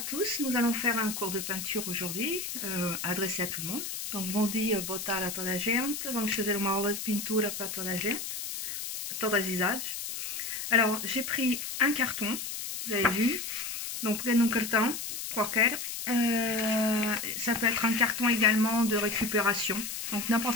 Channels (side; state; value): left; noise; hiss, 6 dB below the sound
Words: nous allons faire un cours de peinture aujourd'hui, adressé à tout le monde. Donc, bom dia, boa tarde a toda a gente. Vamos fazer uma aula de pintura para toda a gente, todas as idades. Alors, j'ai pris un carton, vous avez vu. Donc, prenez un carton, qualquer. Ça peut être un carton également de récupération. Donc,